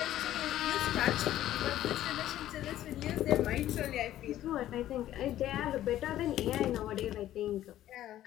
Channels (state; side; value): quieter; right; 13.1 dB